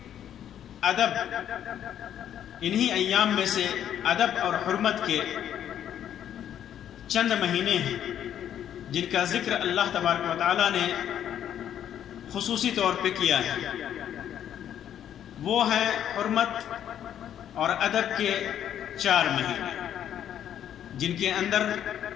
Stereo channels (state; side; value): quieter; right; 10.1 dB